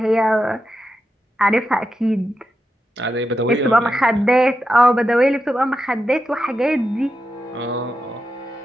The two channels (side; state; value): both; normal; correlation 0.88